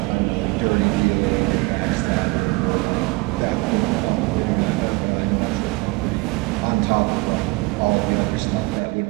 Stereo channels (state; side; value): quieter; left; 24.9 dB